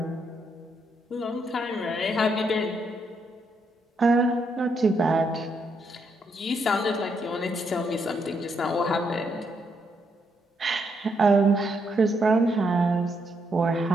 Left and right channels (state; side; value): normal; both; correlation 0.77